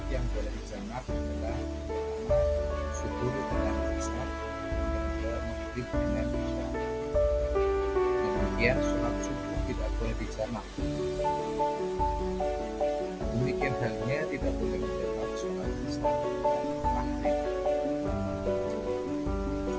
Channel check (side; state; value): both; identical; correlation 1.00